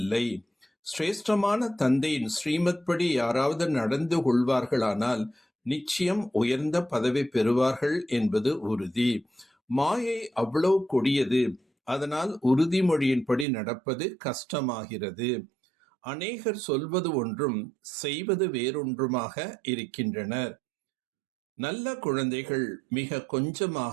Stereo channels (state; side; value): drops out; left; at 13.5 s